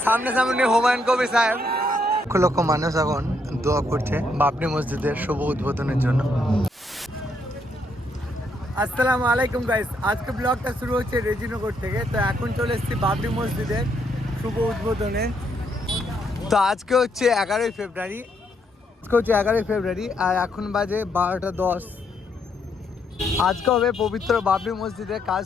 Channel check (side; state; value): both; normal; correlation 0.74